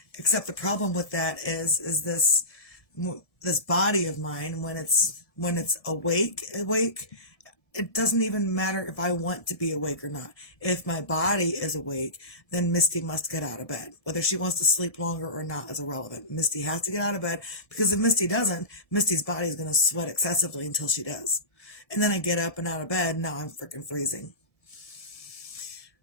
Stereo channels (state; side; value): late; right; 1.7 ms